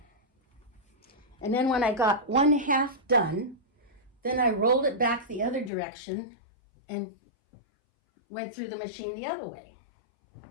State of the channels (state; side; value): drops out; right; at 5.7 s